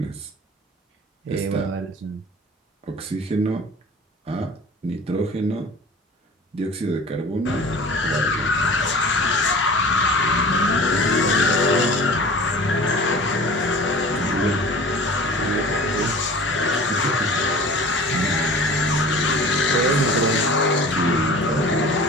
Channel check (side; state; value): both; normal; correlation 0.42